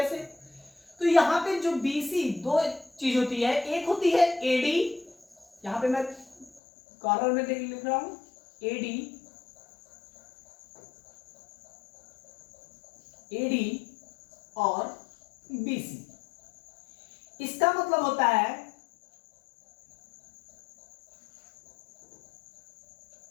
तो यहां पे जो बीसी दो चीज होती है, एक होती है एडी, यहां पे मैं कॉर्नर में लिख रहा हूं एडी, एडी और बीसी। इसका मतलब होता है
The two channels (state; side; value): drops out; right; at 6.6 s